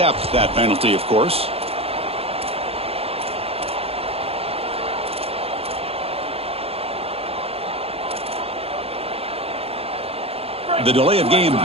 that penalty, of course. The delay of game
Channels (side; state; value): left; late; 0.29 ms